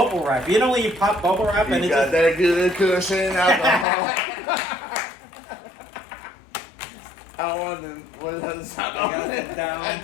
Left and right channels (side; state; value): right; drops out; at 3.9 s